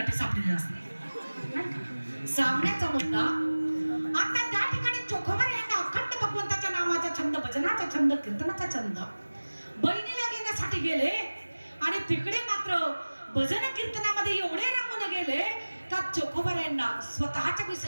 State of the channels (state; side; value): inverted; both; correlation -1.00